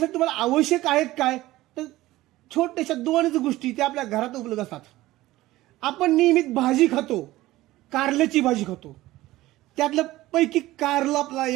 तुम्हाला आवश्यक आहेत काय, तर छोट्याशा 2 गोष्टी त्या आपल्या घरात उपलब्ध असतात. आपण नियमित भाजी खातो, कारल्याची भाजी खातो, त्यातलं पैकी कारलं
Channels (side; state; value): left; quieter; 17.1 dB